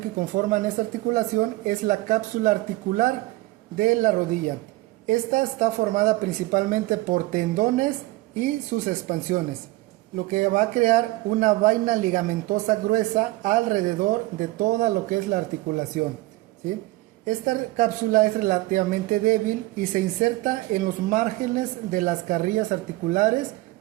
conforman esta articulación es la cápsula articular de la rodilla. Esta está formada principalmente por tendones y sus expansiones, lo que va a crear una vaina ligamentosa gruesa alrededor de toda lo que es la articulación, ¿sí? Esta cápsula es relativamente débil y se inserta en los márgenes de las carrillas articulares,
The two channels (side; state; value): left; quieter; 19.5 dB